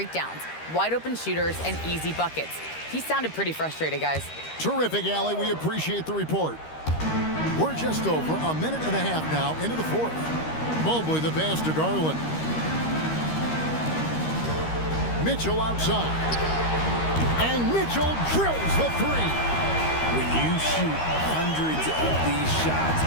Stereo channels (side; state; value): right; late; 13 ms